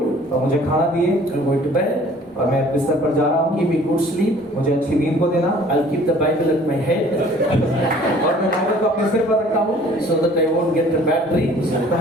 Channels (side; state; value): both; normal; correlation 0.53